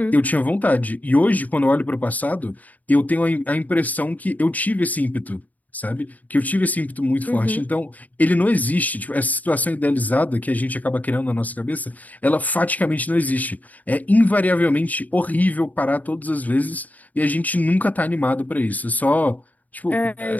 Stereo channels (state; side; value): late; right; 0.076 ms